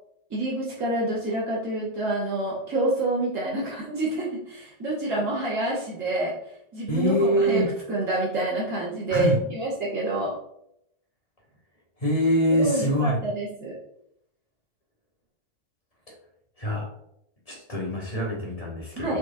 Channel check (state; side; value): late; right; 1.7 ms